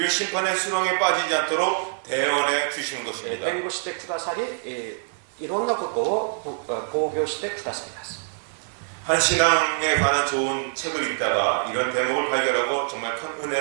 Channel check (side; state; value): left; silent; 58 dB below the other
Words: 심판의 수렁에 빠지지 않도록 대언해 주시는 것입니다. 弁護してくださりいろんなことを防御してくださいます。한 신앙에 관한 좋은 책을 읽다가 이런 대목을 발견하고 정말 큰